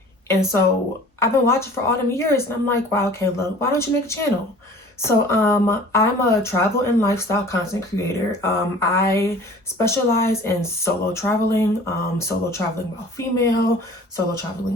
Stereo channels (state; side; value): normal; both; correlation 0.46